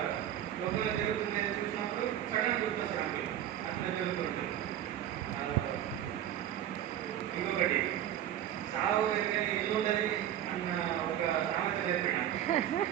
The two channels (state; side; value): quieter; left; 11.4 dB